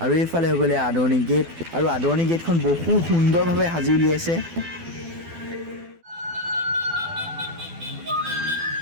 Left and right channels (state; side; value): late; left; 12 ms